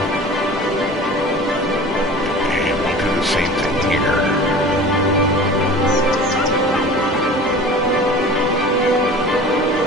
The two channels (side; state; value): both; normal; correlation 0.40